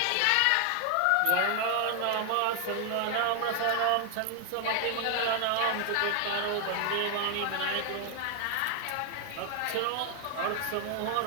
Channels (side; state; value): both; different; correlation 0.00